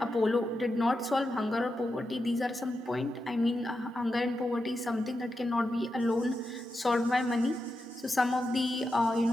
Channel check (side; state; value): both; normal; correlation 0.88